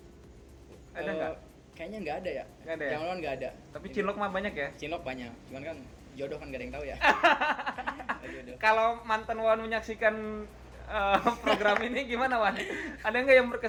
Ada nggak? Kayaknya nggak ada ya. Nggak ada ya? Zaman nggak ada. Tapi cinlok mah banyak ya. Cinlok banyak. Cuman kan jodoh kan gak ada yang tahu ya. Jodoh. Kalau mantan Wan menyaksikan program ini gimana, Wan? Ada nggak yang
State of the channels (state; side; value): identical; both; correlation 1.00